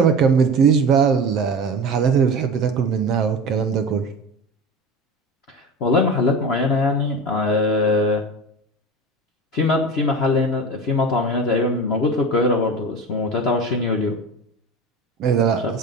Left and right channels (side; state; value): both; normal; correlation 0.30